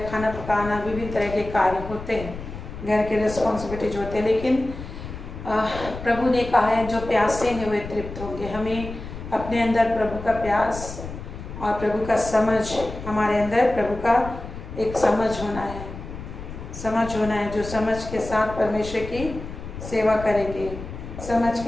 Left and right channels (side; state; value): left; noise; rumble, 10 dB below the sound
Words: खाना पकाना, विभिन्न तरह के कार्य होते हैं, घर के रिस्पॉन्सिबिलिटीज होते हैं। लेकिन प्रभु ने कहा है जो प्यासे हैं वे तृप्त होंगे। हमें अपने अंदर प्रभु का प्यास और प्रभु का समझ, हमारे अंदर प्रभु का एक समझ होना है, जो समझ के साथ परमेश्वर की सेवा करेंगे, समझ